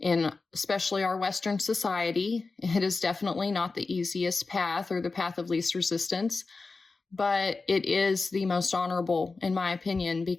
in especially our Western society. It is definitely not the easiest path or the path of least resistance, but it is the most honorable, in my opinion,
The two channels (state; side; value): quieter; right; 3.9 dB